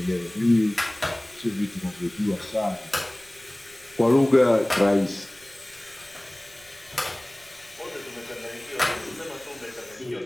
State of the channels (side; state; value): left; noise; rumble, 29 dB below the sound